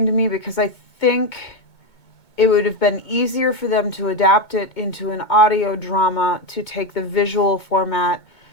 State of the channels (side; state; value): right; late; 2.2 ms